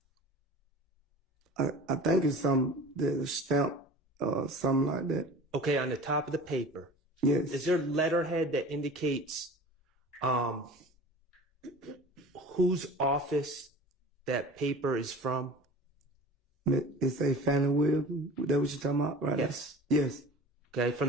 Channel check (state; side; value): normal; both; correlation 0.40